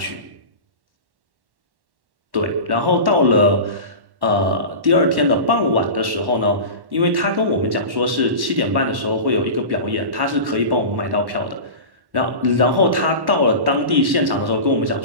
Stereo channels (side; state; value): left; late; 1.1 ms